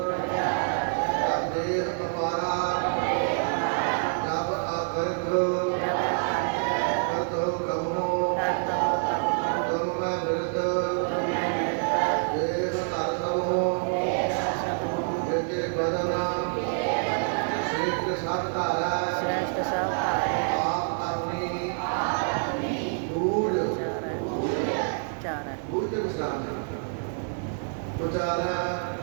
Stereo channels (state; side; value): silent; left; digital silence